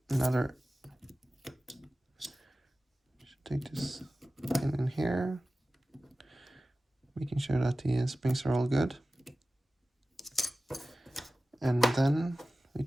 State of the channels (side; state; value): both; normal; correlation 0.96